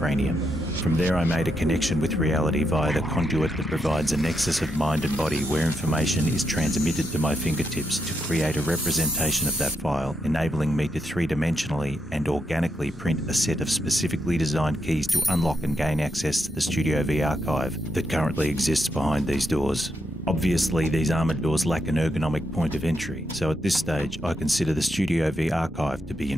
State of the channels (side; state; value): both; normal; correlation 0.82